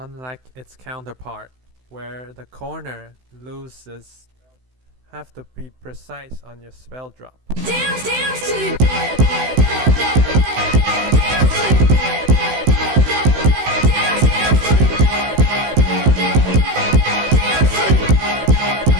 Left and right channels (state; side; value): late; left; 16 ms